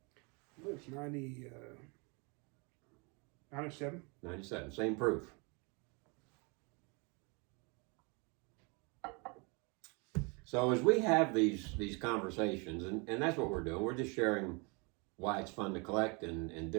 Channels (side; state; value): left; quieter; 31.2 dB